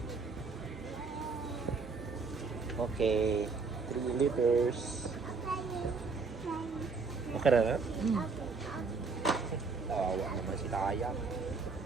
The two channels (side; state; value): left; quieter; 4.5 dB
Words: Okay. 3 liters. Okay na na? Tawa naman si Taya.